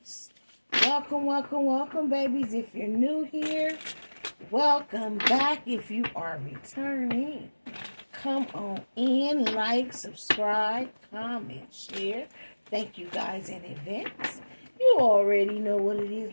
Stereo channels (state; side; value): inverted; both; correlation -1.00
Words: Welcome, welcome, welcome, babies. If you're new here, welcome back. If you are returning, come on in, like, subscribe, comment, share. Thank you guys in advance. You already know what it is,